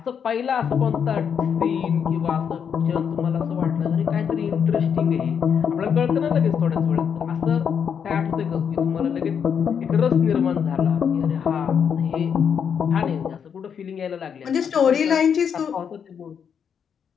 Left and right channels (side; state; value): right; quieter; 7.4 dB